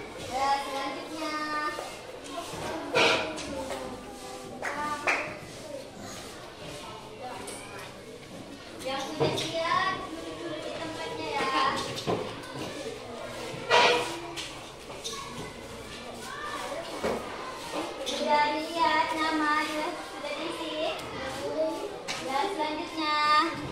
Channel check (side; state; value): both; identical; correlation 1.00